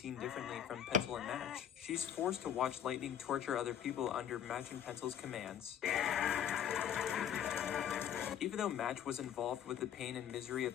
differently from Pencil and Match, she's forced to watch Lightning torture other people under Match and Pencil's commands. Even though Match was involved with the pain and misery of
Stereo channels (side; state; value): right; quieter; 9.4 dB